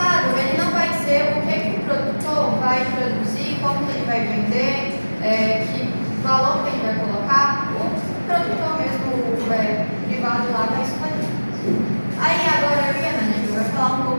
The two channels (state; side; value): inverted; both; correlation -1.00